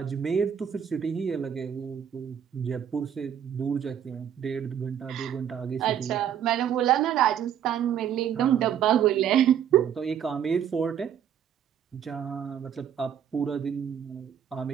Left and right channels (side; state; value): left; quieter; 9.1 dB